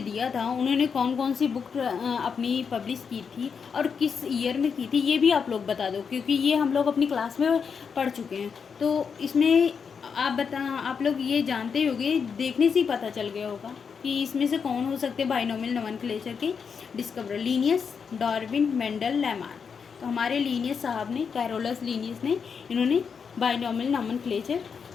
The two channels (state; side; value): quieter; right; 6.2 dB